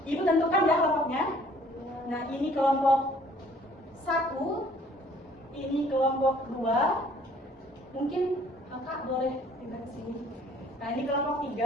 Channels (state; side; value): normal; both; correlation 0.58